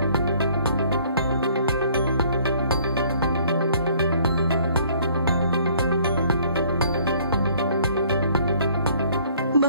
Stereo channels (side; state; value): both; inverted; correlation -0.59